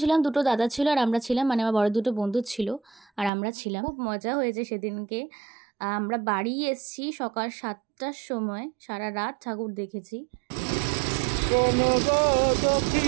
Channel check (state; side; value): drops out; left; at 3.3 s